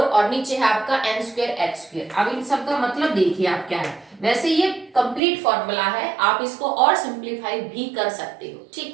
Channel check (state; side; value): drops out; left; at 5.2 s